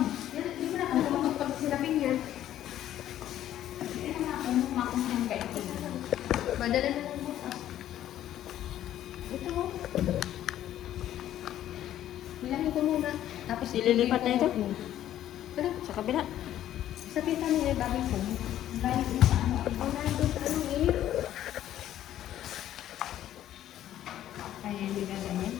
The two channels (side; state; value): right; quieter; 12.1 dB